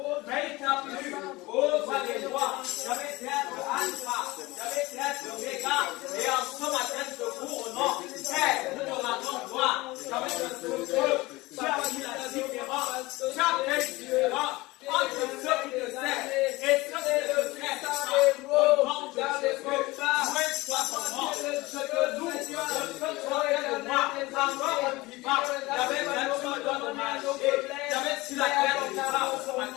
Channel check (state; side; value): quieter; right; 21.0 dB